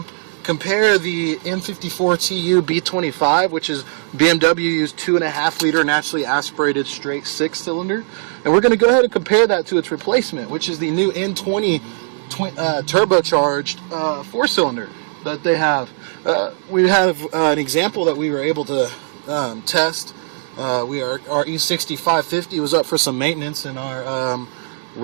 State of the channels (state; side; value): silent; left; 67 dB below the other